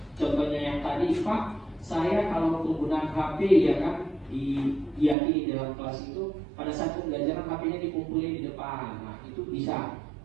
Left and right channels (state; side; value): drops out; left; at 5.2 s